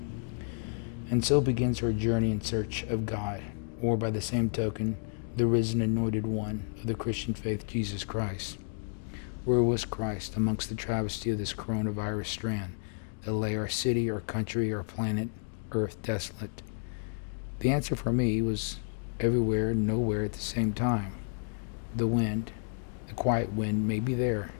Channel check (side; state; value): right; silent; digital silence